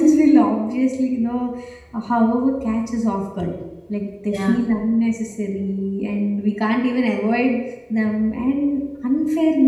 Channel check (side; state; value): both; identical; correlation 1.00